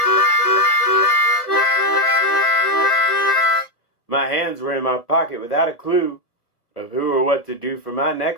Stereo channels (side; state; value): right; late; 1.3 ms